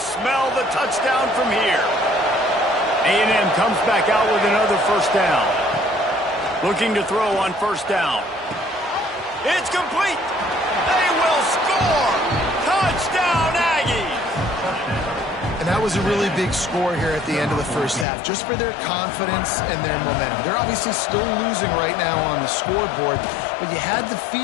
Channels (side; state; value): right; drops out; at 18.1 s